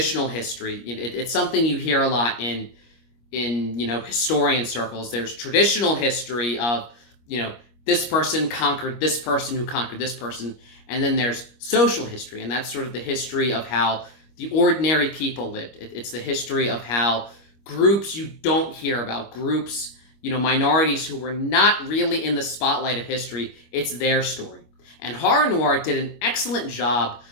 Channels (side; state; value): right; late; 25 ms